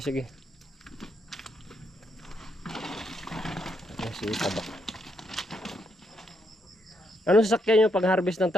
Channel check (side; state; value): both; normal; correlation 0.77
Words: si Tabak. Anong sasakyan nyo pag harvest ng